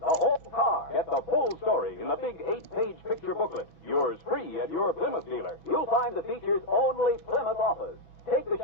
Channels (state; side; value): late; right; 6.1 ms